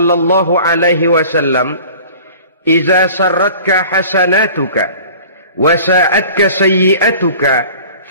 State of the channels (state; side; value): inverted; both; correlation -0.44